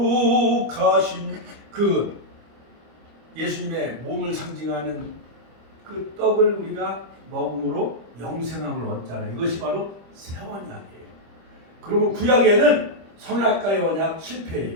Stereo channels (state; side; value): late; left; 25 ms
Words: 거룩하신 그 예수님의 몸을 상징하는 그 떡을 우리가 먹음으로 영생함을 얻잖아요. 이것이 바로 새 언약이에요. 그러면 구약에는 선악과의 언약 실패예요.